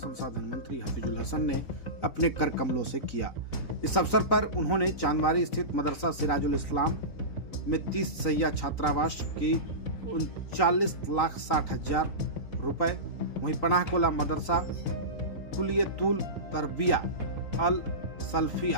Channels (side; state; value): right; late; 3.9 ms